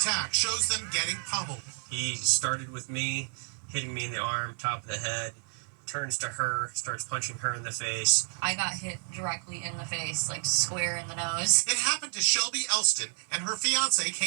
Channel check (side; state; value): left; silent; 58 dB below the other